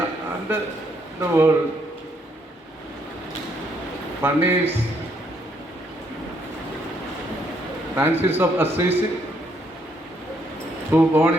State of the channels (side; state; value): both; normal; correlation 0.71